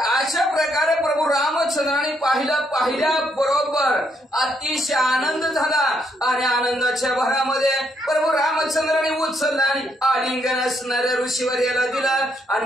प्रकारे प्रभू रामचंद्राने पाहिल्या बरोबर अतिशय आनंद झाला आणि आनंदाच्या भरामध्ये प्रभू रामचंद्राने उचलला आणि आलिंगन असणाऱ्या ऋषीवर याला दिलं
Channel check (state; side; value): normal; both; correlation 0.74